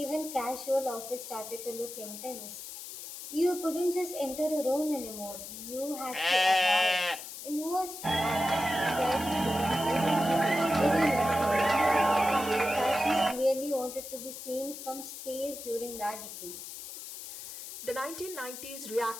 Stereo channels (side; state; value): left; noise; hiss, 11 dB below the sound